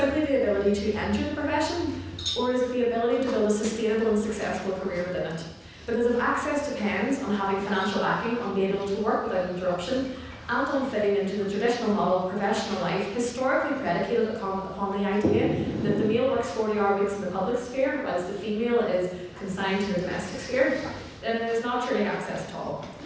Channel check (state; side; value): identical; both; correlation 1.00